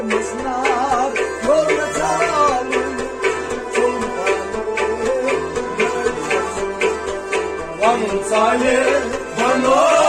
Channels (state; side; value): identical; both; correlation 1.00